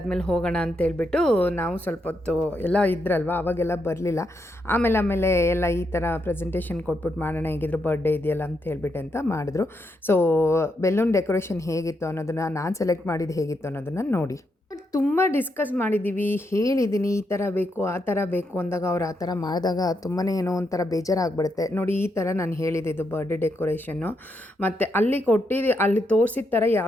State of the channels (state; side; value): normal; both; correlation 0.81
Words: ಹೋಗೋಣ ಅಂತೇಳ್ಬಿಟ್ಟು ನಾವು ಸ್ವಲ್ಪ ಹೊತ್ತು ಎಲ್ಲ ಇದ್ರಲ್ವ, ಅವಾಗೆಲ್ಲ ಬರಲಿಲ್ಲ. ಆಮೇಲೆ ಎಲ್ಲ ಈ ಥರ ಪ್ರೆಸೆಂಟೇಷನ್ ಕೊಟ್ಬಿಟ್ಟು ಮಾಡೋಣ, ಹೇಗಿದ್ರು ಬರ್ಡೇ ಇದೆಯಲ್ಲ ಅಂತ ಹೇಳ್ಬಿಟ್ಟು ಅಂತ ಮಾಡಿದ್ರು. ಸೊ ಬೆಲೂನ್ ಡೆಕೋರೇಷನ್ ಹೇಗಿತ್ತು ಅನ್ನೋದನ್ನು, ನಾನು ಸೆಲೆಕ್ಟ್ ಮಾಡಿದ್ದು ಹೇಗಿತ್ತು ಅನ್ನೋದನ್ನು ನೋಡಿ. ತುಂಬ ಡಿಸ್ಕಸ್ ಮಾಡಿದ್ದೀವಿ, ಹೇಳಿದ್ದೀನಿ ಈ ಥರ ಬೇಕು ಆ ಥರ ಬೇಕು ಅಂದಾಗ ಅವ್ರು ಆ ಥರ ಮಾಡಿದಾಗ ತುಂಬಾ ಏನೋ ಒಂಥರ ಬೇಜಾರಾಗ್ಬಿಡುತ್ತೆ. ನೋಡಿ ಈ ಥರ ನಾನು ಹೇಳಿದ್ದು ಬರ್ಡೇ ಡೆಕೋರೇಷನ್ನು, ಮತ್ತು ಅಲ್ಲಿ ತೋರಿಸಿದ ಥರ